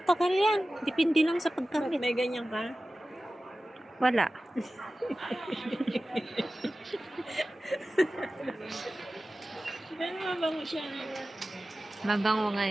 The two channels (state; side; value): normal; both; correlation 0.95